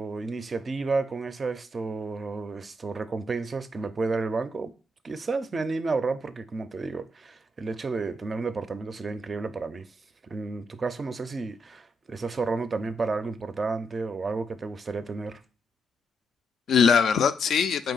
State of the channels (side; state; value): both; normal; correlation 0.79